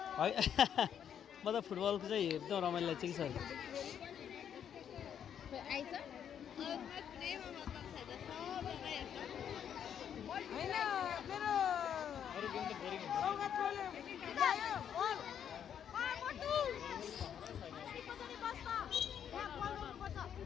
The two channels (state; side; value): quieter; right; 8.8 dB